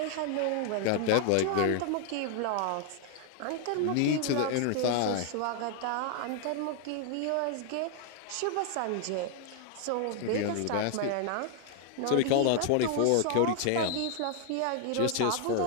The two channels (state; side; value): different; both; correlation 0.00